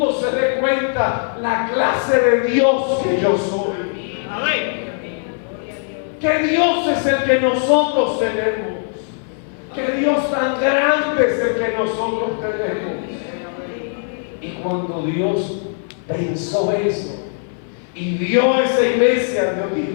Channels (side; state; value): right; silent; 64 dB below the other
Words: se dé cuenta la clase de Dios que yo soy. Que Dios es el que nosotros tenemos. Que Dios tan grande es el que nosotros tenemos. Y cuando Dios pensó eso y vio esa iglesia, Dios